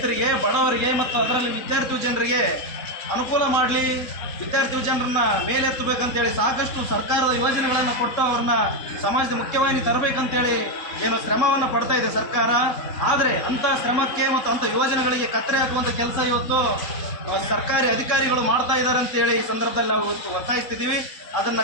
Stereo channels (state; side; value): late; right; 3.6 ms